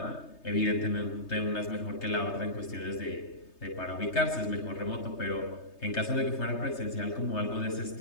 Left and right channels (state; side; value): late; right; 3.3 ms